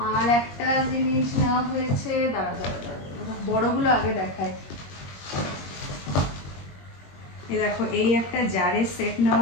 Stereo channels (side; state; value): right; late; 21 ms